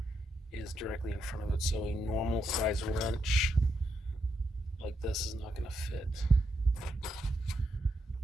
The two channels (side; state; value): both; normal; correlation 0.81